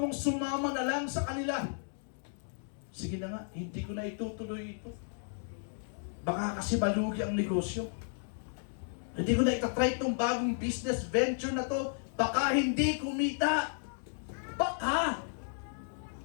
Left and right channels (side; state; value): right; silent; digital silence